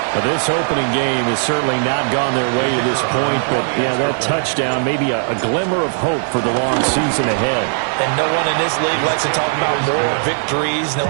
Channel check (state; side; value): silent; left; digital silence